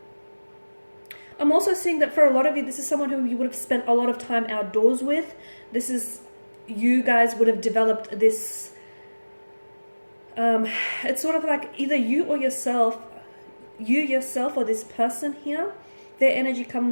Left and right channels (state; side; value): inverted; both; correlation -1.00